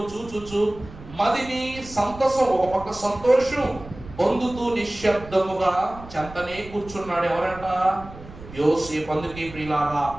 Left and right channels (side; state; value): right; noise; rumble, 16 dB below the sound